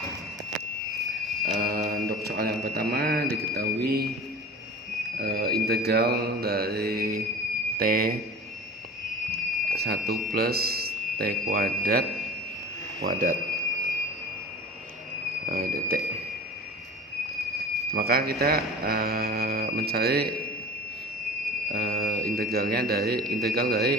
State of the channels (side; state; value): both; normal; correlation 0.38